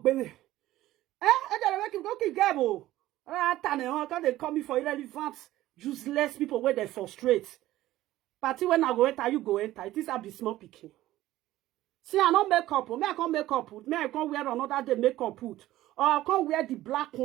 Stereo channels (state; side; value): quieter; left; 15.3 dB